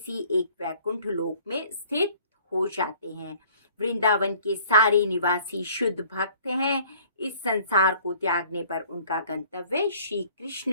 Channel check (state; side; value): inverted; both; correlation -0.54